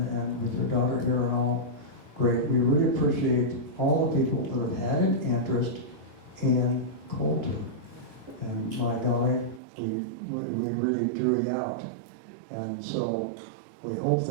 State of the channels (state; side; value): drops out; left; at 9.6 s